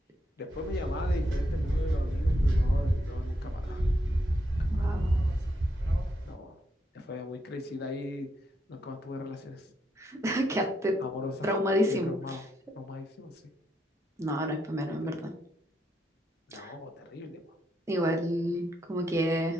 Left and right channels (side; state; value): both; normal; correlation 0.79